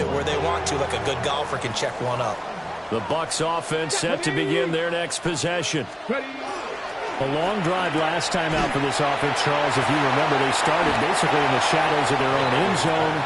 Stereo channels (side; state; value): both; identical; correlation 1.00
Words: where they want to, like a good golfer can check one up. The Bucs offense set to begin their next possession. A long drive last time out for this offense, Charles. If you remember, they started basically in the shadows of their own end zone,